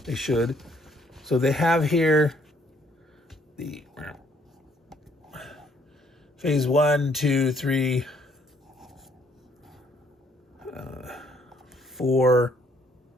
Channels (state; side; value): normal; both; correlation 0.66